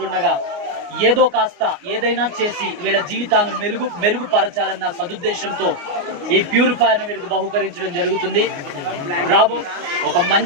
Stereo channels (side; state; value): left; late; 29 ms